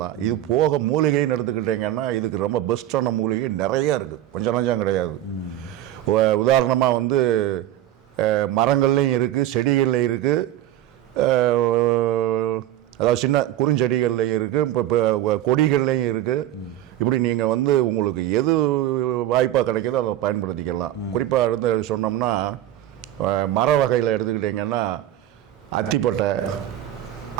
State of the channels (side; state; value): left; quieter; 13.0 dB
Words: இது போக மூலிகைன்னு எடுத்துக்கிட்டிங்கன்னா இதுக்கு ரொம்ப பெஸ்ட்டான மூலிகை நிறையா இருக்குது, கொஞ்சம் நஞ்சம் கிடையாது. உதாரணமாக வந்து மரங்கள்லேயும் இருக்குது, செடிகள்லையும் இருக்குது, அதாவது சின்ன குறுஞ்செடிகள்லையும் இருக்குது, இப்போ கொடிகள்லையும் இருக்குது. இப்படி நீங்கள் வந்து உங்களுக்கு எது வாய்ப்பாக கிடைக்கிதோ அதை பயன்படுத்திக்கலாம். குறிப்பாக எடுத்து சொன்னோம்னா மர வகையில் எடுத்துக்கிட்டிங்கன்னா அத்திப்பட்டை,